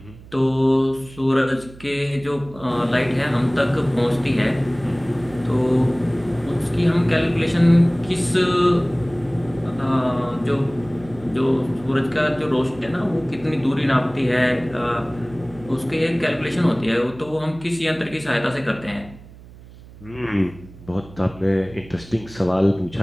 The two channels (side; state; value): right; noise; hum, 20 dB below the sound